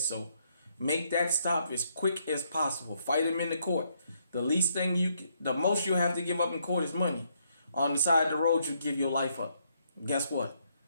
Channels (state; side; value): inverted; both; correlation -0.73